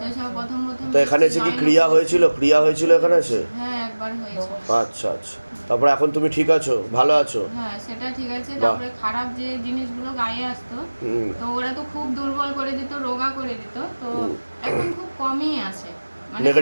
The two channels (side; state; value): both; inverted; correlation -1.00